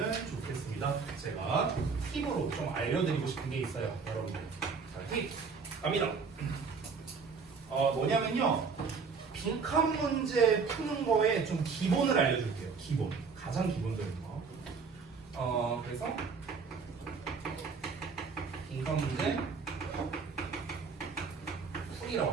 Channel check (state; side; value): quieter; left; 5.2 dB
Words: 좋겠습니다. 제가 팁으로 좀 알려드리고 싶은 게 있어요, 여러분들. 자, 팁 갑니다. 뭐냐면요, 빈칸 문제 푸는 거에 좀 기본을 알려줄게요. 기본, 가장 기본적인 거. 그래서 빈칸 문제 풀이라고